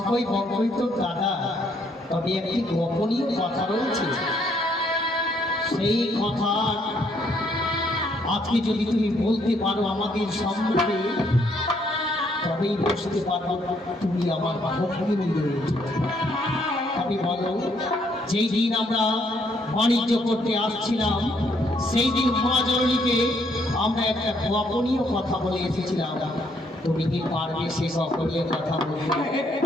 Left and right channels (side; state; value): both; normal; correlation 0.70